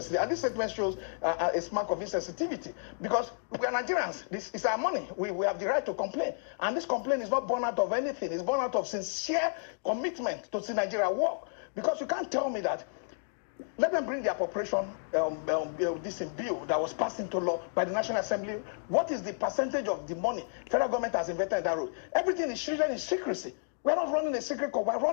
and this statement shows a mark of insensitivity because we are Nigerians. This is our money. We have the right to complain, and this complaint is not born out of anything. It's born out of sincere commitment to see Nigeria work. Because you can't tell me that, let them bring the appropriation this bill that was passed into law by the National Assembly. What is the percentage of the money federal government has invested in that road? Everything is treated in secrecy. We're not running a secret court. We're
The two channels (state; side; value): silent; right; digital silence